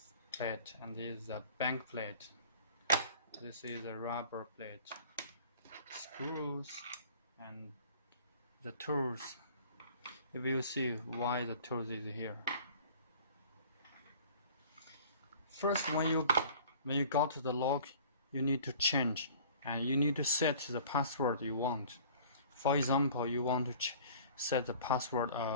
plate and this is a back plate. This is a rubber plate, screws and the tools. You will see why the tools is here. First, when you got the lock, you need to change and you need to set the password you want. For example, you want to set the password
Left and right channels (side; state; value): both; inverted; correlation -0.48